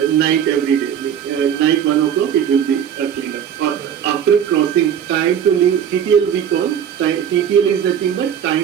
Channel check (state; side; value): quieter; left; 8.8 dB